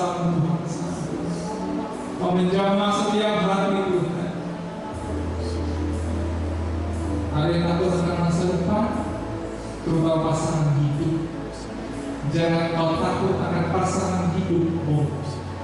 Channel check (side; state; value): both; identical; correlation 1.00